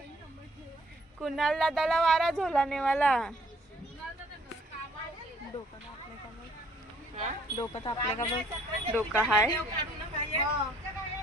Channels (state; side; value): normal; both; correlation 0.61